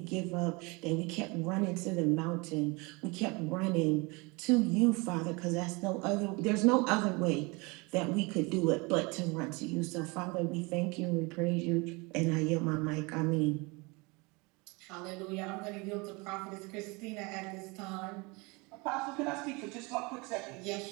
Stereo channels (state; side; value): quieter; left; 27.2 dB